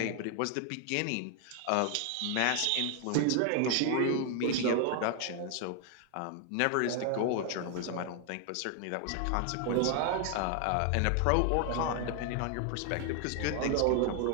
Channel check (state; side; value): different; both; correlation 0.00